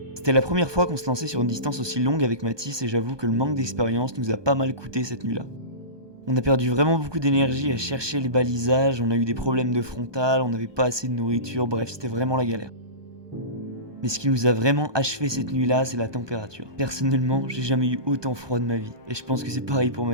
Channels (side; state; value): left; late; 1.2 ms